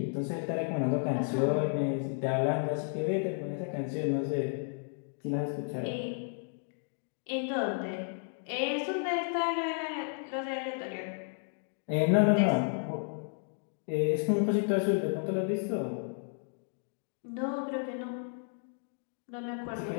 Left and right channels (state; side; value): silent; right; 56 dB below the other